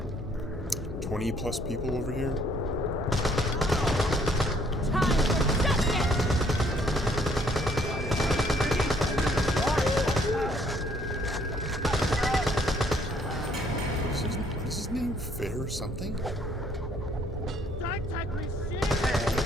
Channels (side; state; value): both; normal; correlation 0.64